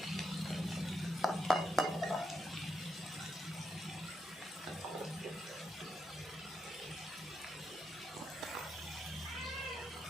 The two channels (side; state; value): both; normal; correlation 0.81